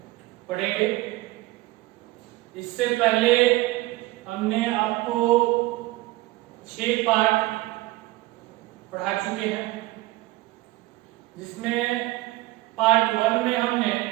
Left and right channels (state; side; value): quieter; left; 19.1 dB